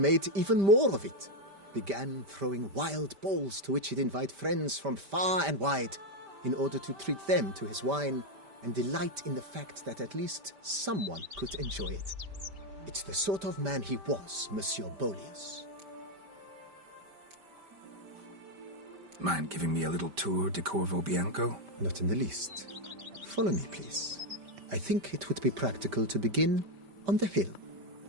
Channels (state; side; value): late; left; 5.1 ms